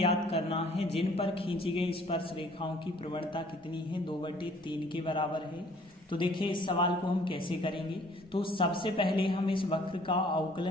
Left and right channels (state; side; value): normal; both; correlation 0.57